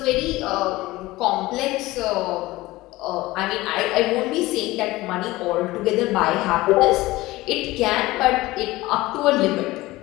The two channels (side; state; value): right; quieter; 19.0 dB